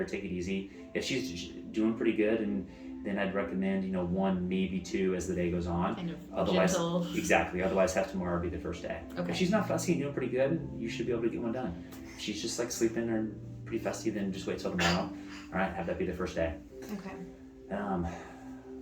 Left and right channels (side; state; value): both; identical; correlation 1.00